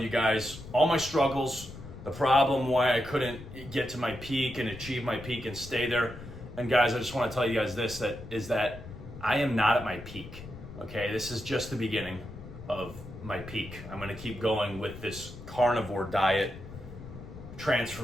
guys all my struggles, the problem, why I couldn't get to my peak and achieve my peak and stay there. And guys, I just want to tell you guys this, that I am not at my peak. Okay, this is just the beginning of my peak. I'm going to keep going with this carnivore diet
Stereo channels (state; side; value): noise; left; rumble, 13 dB below the sound